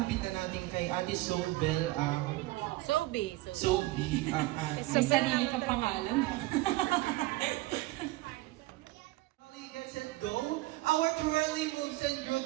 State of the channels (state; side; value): quieter; left; 19.2 dB